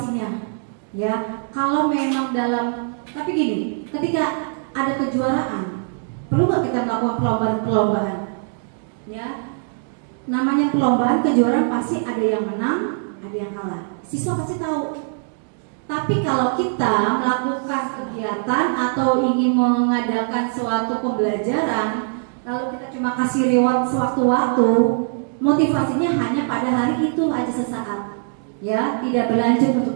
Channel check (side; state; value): left; silent; 60 dB below the other